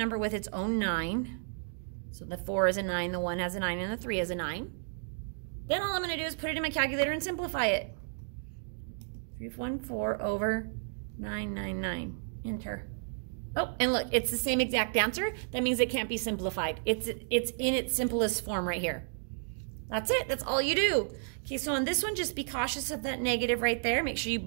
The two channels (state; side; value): silent; left; digital silence